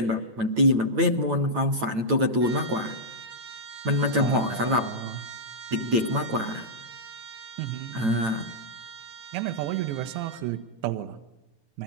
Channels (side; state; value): left; late; 9.0 ms